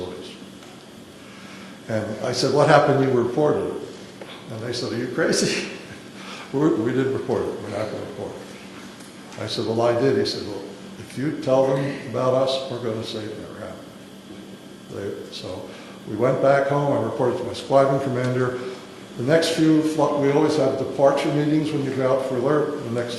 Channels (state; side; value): identical; both; correlation 1.00